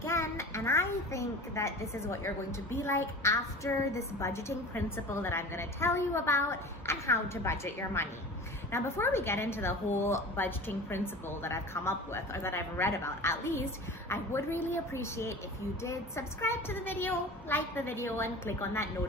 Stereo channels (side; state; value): both; normal; correlation 0.36